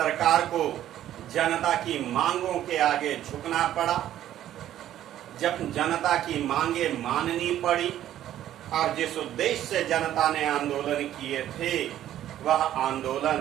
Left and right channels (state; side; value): quieter; left; 12.1 dB